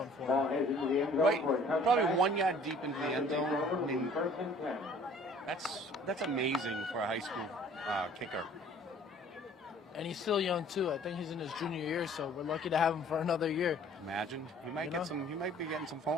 for him. Right, probably 1 yard deep into the end zone. I mean, that's amazing for a high school kicker. And he's still young too. I think he's in his junior year, so we're lucky to have him for another year. Imagine he might He might be getting some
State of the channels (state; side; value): normal; both; correlation 0.53